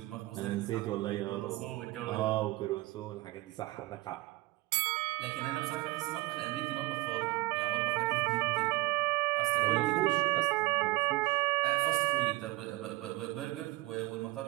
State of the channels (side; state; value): left; quieter; 20.5 dB